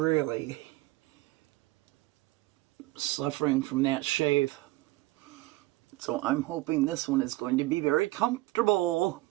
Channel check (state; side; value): quieter; left; 19.5 dB